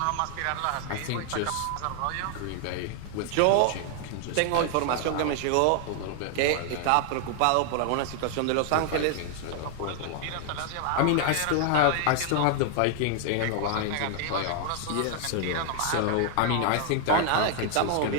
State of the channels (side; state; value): both; different; correlation 0.00